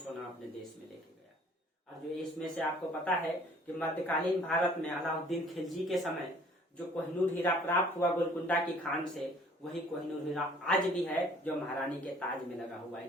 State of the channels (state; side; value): normal; both; correlation 0.55